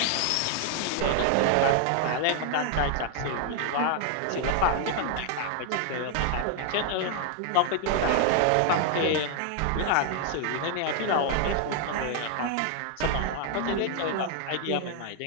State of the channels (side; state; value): both; different; correlation 0.00